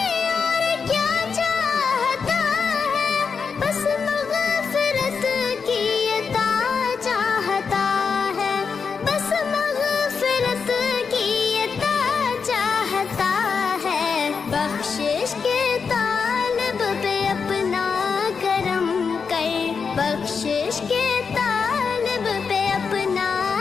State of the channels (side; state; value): right; quieter; 5.7 dB